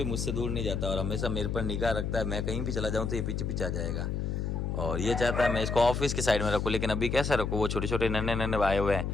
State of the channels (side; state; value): left; noise; hum, 1 dB below the sound